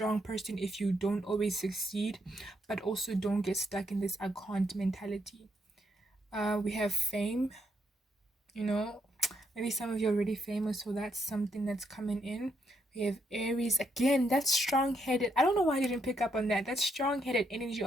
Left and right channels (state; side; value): normal; both; correlation 0.77